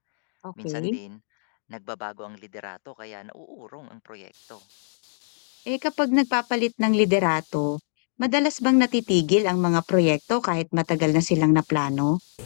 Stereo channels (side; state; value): right; silent; digital silence